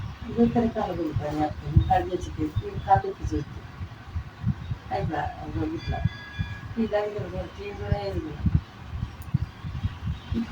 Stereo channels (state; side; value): identical; both; correlation 1.00